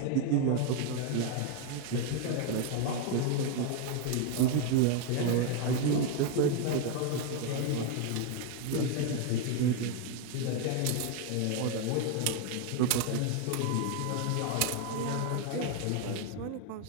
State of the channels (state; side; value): different; both; correlation 0.01